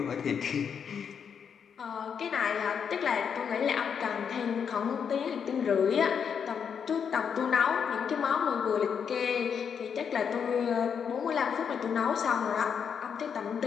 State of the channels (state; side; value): quieter; right; 7.1 dB